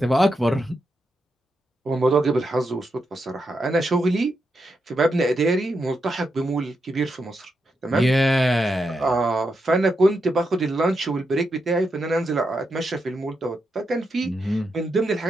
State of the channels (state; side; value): normal; both; correlation 0.84